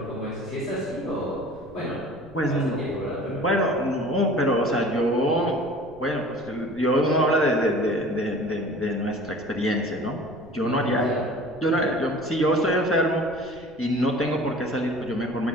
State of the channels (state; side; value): noise; right; rumble, 24 dB below the sound